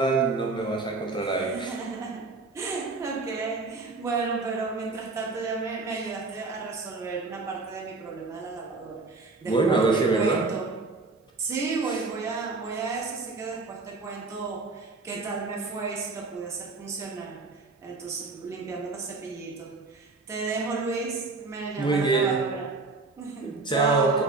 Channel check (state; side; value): quieter; left; 3.7 dB